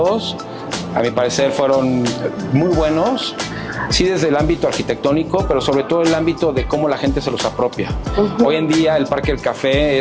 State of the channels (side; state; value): both; identical; correlation 1.00